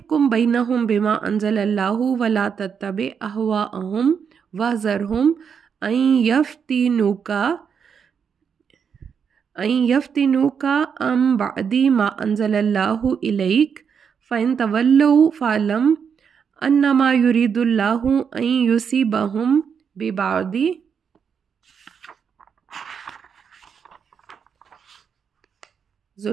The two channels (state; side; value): quieter; left; 6.9 dB